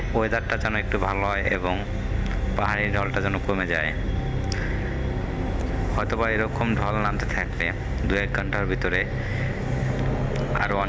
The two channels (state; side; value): identical; both; correlation 1.00